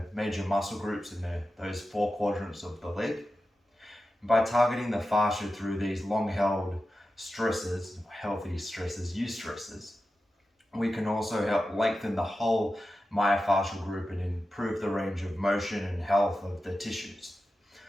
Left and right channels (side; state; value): both; normal; correlation 0.92